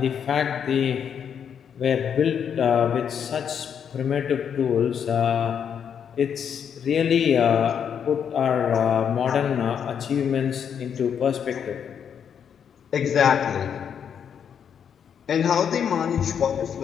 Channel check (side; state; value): right; quieter; 7.9 dB